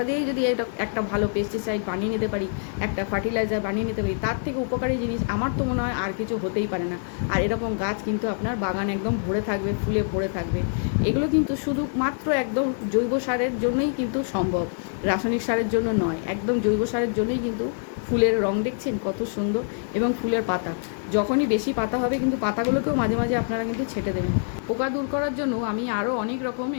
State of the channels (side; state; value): right; silent; digital silence